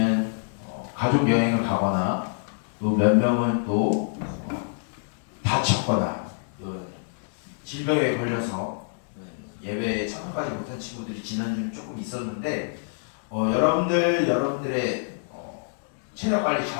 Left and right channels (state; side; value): silent; right; digital silence